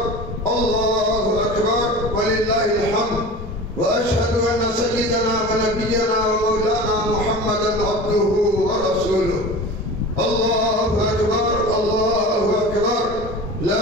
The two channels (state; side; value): normal; both; correlation 0.34